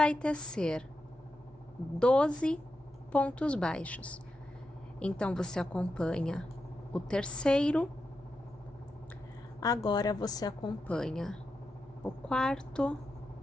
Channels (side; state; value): both; normal; correlation 0.88